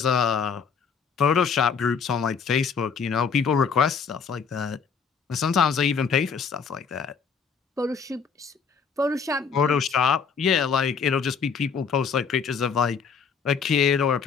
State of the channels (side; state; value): right; quieter; 6.0 dB